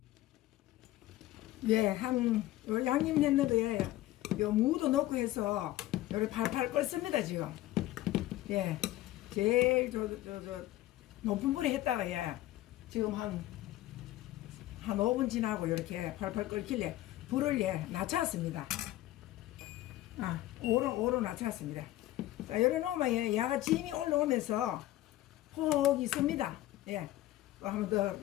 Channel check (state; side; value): quieter; right; 15.6 dB